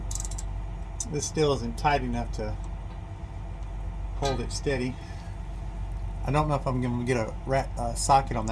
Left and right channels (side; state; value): both; identical; correlation 1.00